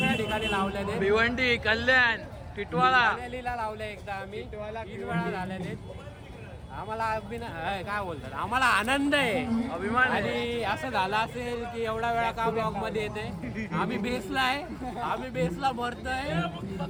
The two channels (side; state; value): both; identical; correlation 1.00